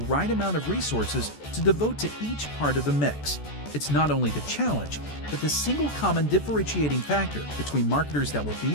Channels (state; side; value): late; right; 14 ms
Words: amount of resources to devote to each part of the mix. It's not only the challenge, but the single common differentiating factor between marketers that will be